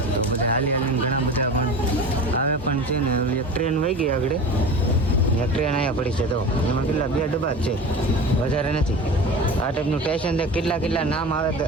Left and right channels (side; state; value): both; normal; correlation 0.33